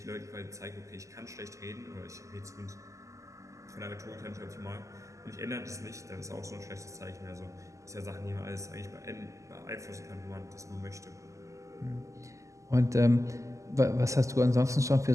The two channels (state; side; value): late; left; 0.16 ms